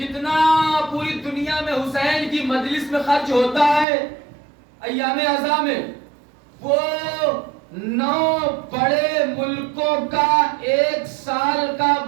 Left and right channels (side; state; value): left; drops out; at 3.9 s